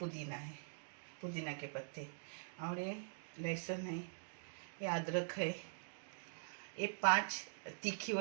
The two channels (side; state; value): left; silent; digital silence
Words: है, पुदीना के पत्ते, और ये लहसुन है, ये अदरक है, ये 5 तीखी